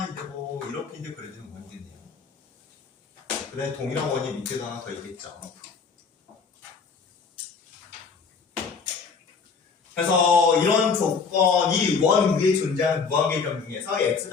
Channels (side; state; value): right; quieter; 5.3 dB